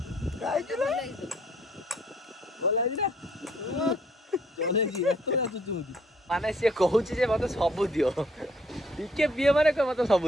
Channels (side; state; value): both; normal; correlation 0.64